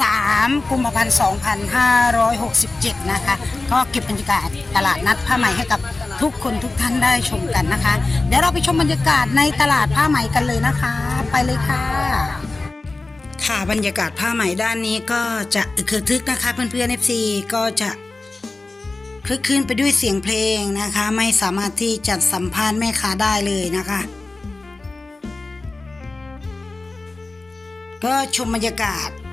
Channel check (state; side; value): quieter; right; 3.3 dB